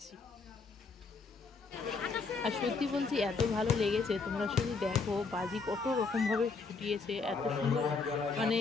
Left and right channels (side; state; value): right; quieter; 4.5 dB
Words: আর সত্যি বলছি এত ভালো লেগেছে, তোমরা শুধু দেখো বাজি কত রকমভাবে ফুটিয়েছে, এত সুন্দর মানে